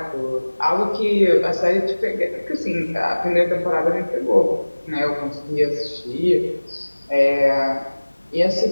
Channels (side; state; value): both; inverted; correlation -1.00